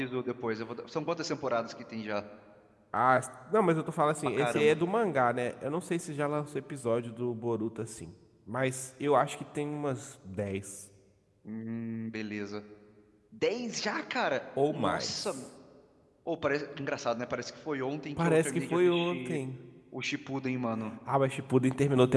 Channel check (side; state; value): both; identical; correlation 1.00